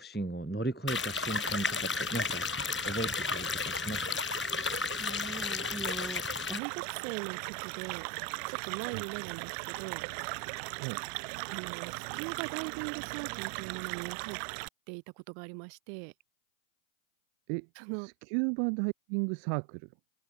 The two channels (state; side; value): drops out; left; at 6.6 s